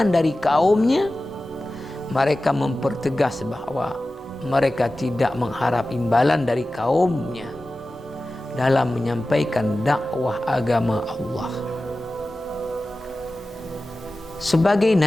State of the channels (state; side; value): normal; both; correlation 0.95